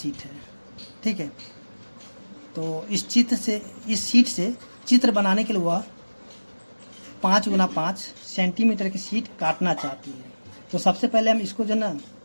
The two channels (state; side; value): inverted; both; correlation -1.00